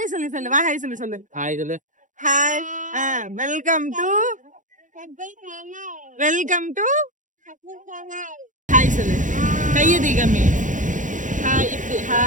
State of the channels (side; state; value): left; late; 0.37 ms